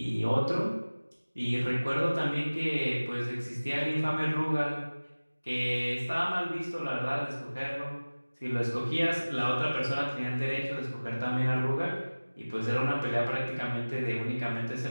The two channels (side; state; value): both; inverted; correlation -1.00